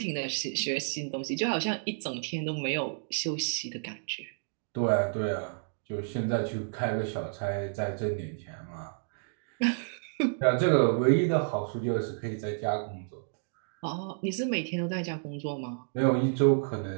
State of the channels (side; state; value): left; silent; digital silence